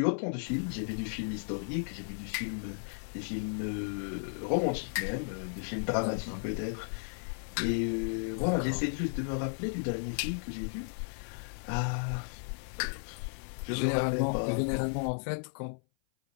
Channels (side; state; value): right; silent; 55 dB below the other